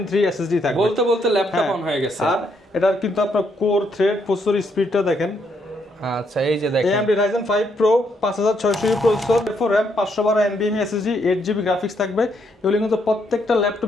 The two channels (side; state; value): both; normal; correlation 0.74